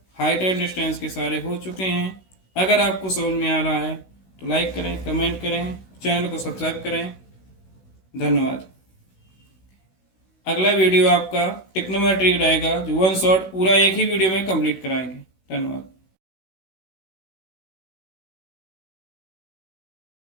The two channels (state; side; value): late; right; 16 ms